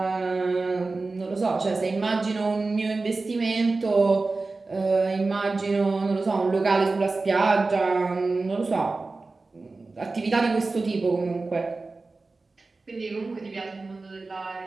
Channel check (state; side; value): quieter; left; 3.6 dB